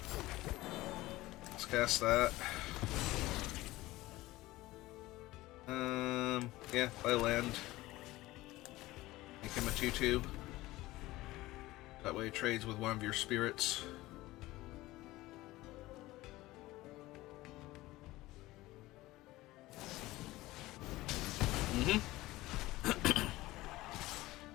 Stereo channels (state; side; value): quieter; right; 18.3 dB